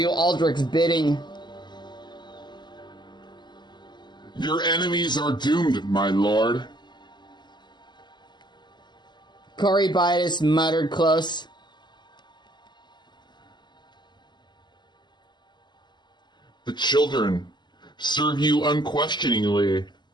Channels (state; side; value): late; right; 0.21 ms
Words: Aldrich's bidding. Your enemies are doomed, my lord. Corybitis muttered close. The children serve you unquestioningly.